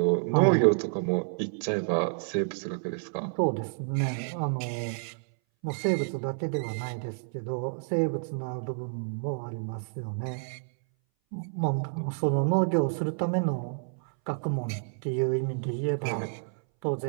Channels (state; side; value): silent; left; 58 dB below the other